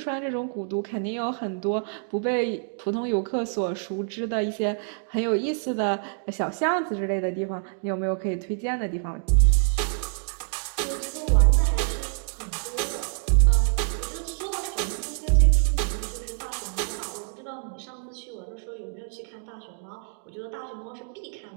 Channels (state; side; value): silent; left; 61 dB below the other